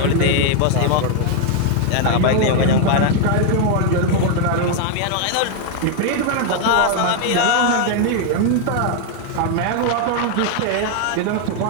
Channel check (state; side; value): different; both; correlation 0.00